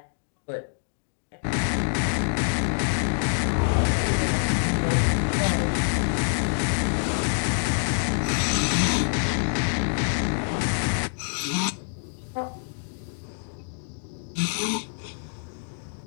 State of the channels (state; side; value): silent; right; 61 dB below the other